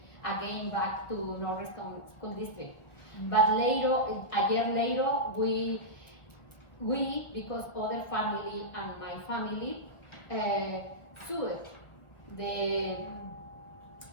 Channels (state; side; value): late; right; 1.2 ms